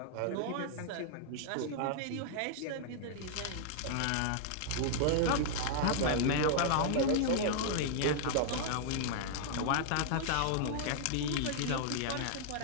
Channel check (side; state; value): both; different; correlation -0.01